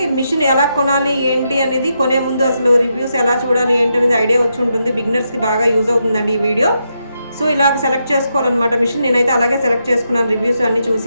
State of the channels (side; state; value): both; inverted; correlation -0.83